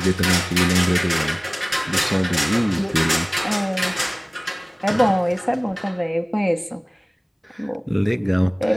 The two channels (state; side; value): identical; both; correlation 1.00